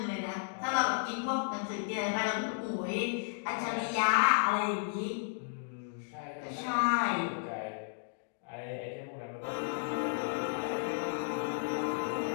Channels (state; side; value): silent; right; digital silence